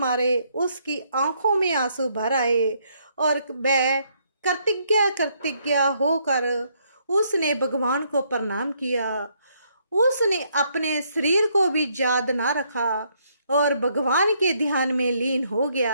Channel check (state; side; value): inverted; both; correlation -0.71